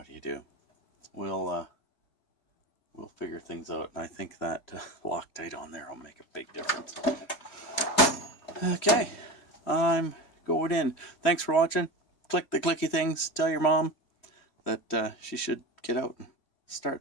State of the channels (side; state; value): right; late; 3.1 ms